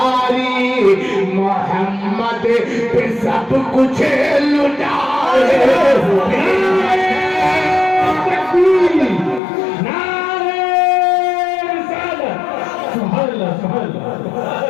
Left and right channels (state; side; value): drops out; right; at 9.4 s